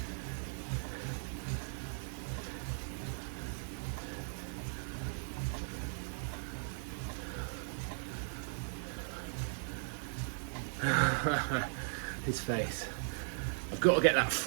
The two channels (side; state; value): left; silent; digital silence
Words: His face. I've got to get that